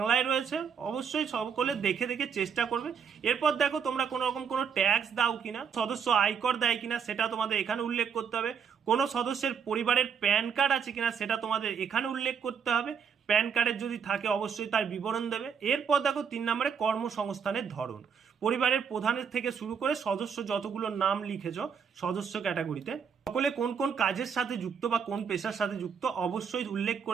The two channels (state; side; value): quieter; left; 6.8 dB